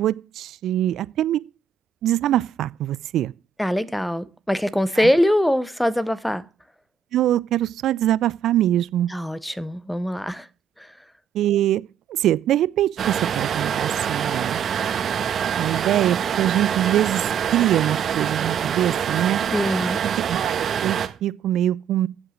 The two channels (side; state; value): left; quieter; 6.6 dB